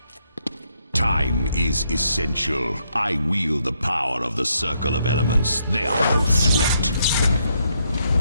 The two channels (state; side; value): inverted; both; correlation -0.76